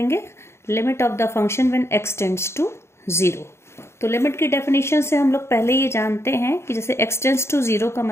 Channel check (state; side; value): late; right; 0.13 ms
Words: limit of the function when x tends to 0। तो लिमिट की डेफिनेशन से हम लोग पहले ये जानते हैं कि जैसे x टेंड्स टू 0 का